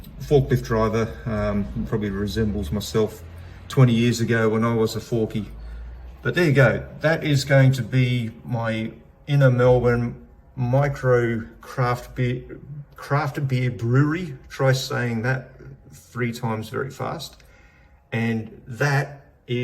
forklift driver, probably resembles myself 20 years ago when I was a forky. But there you go. That is going to be my inner Melbourne micro craft beer brewery. Try saying that 3 times very fast. And that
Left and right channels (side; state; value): both; identical; correlation 1.00